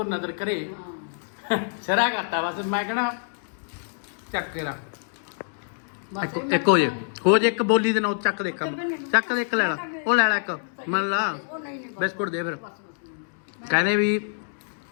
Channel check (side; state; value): right; silent; digital silence